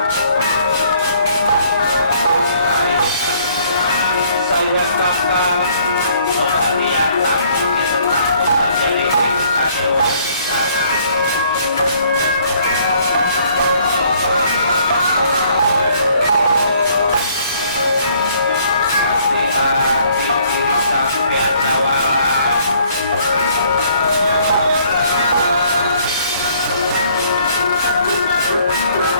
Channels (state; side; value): inverted; both; correlation -0.62